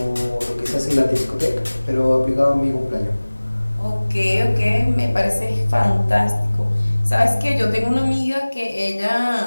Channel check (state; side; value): inverted; both; correlation -1.00